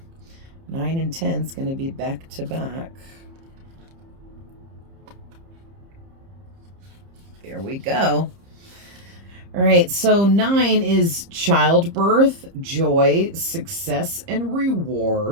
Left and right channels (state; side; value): late; left; 30 ms